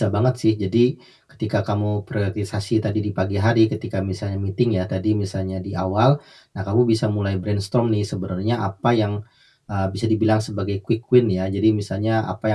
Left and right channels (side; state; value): both; identical; correlation 1.00